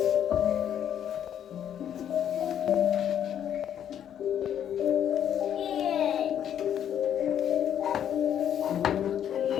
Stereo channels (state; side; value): quieter; right; 9.7 dB